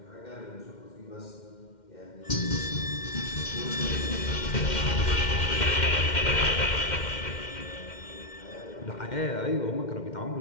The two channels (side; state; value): right; late; 2.1 ms